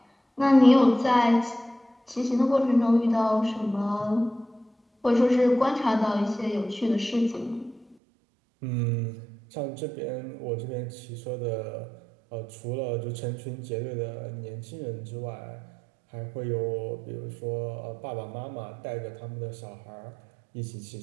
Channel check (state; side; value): drops out; left; at 8.0 s